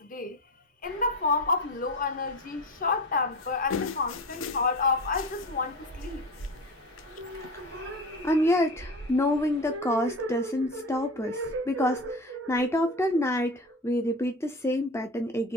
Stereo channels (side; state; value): both; normal; correlation 0.30